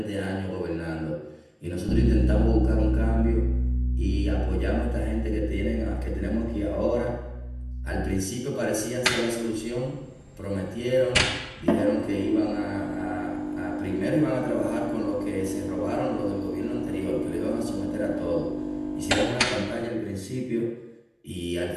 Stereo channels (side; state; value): both; identical; correlation 1.00